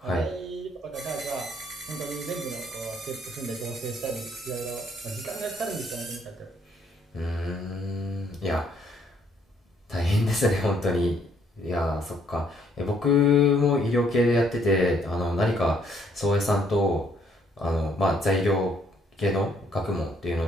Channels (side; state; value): both; normal; correlation 0.67